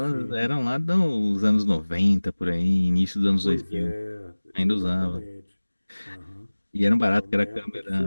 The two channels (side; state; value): both; inverted; correlation -1.00